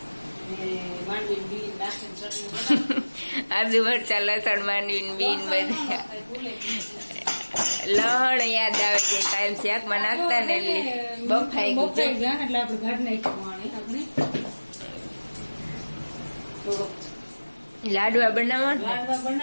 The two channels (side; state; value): both; inverted; correlation -1.00